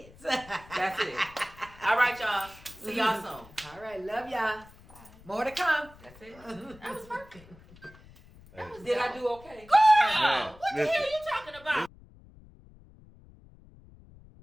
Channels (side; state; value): left; noise; rumble, 22 dB below the sound